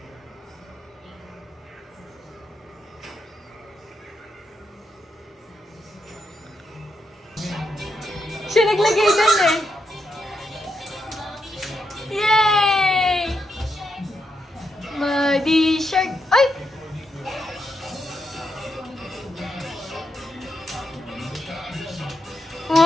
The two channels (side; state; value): both; normal; correlation 0.82